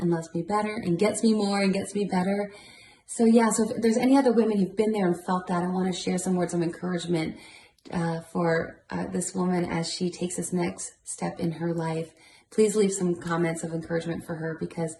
loves me better and gets me more and gets me better. So yeah, so if there's any other women who've been there and felt that, I want to share some words of encouragement for this woman as she takes this next step in her life, please leave some comments of encouragement for her, because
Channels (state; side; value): identical; both; correlation 1.00